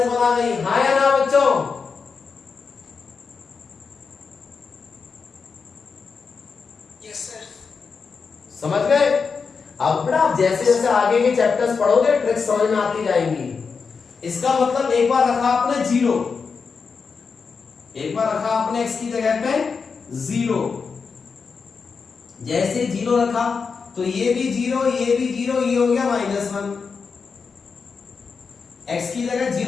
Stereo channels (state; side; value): quieter; right; 5.3 dB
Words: आ गई। हाँ या ना बच्चों? Yes sir. समझ गए? अब बेटा जैसे जैसे आगे के चैप्टर्स पढ़ोगे ट्रिक्स समझ में आती जाएंगी। इसका मतलब एक बार रखा आपने 0, एक बार रखा आपने x की जगह पे 0, जैसे 0 रखा तो ये भी 0, ये भी 0, ये हो गया -1। x की जगह